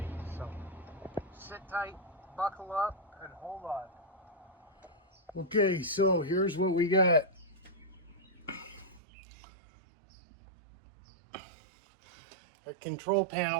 So sit tight, buckle up, and hold on. Okay, so here's what we got. The control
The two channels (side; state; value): left; drops out; at 9.0 s